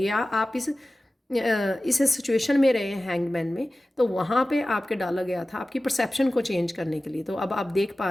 आप इस सिचुएशन में रहे हैं हैंगमैन में, तो वहाँ पे आपके डाला गया था आपकी परसेप्शन को चेंज करने के लिए। तो अब आप देख पा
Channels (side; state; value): both; normal; correlation 0.96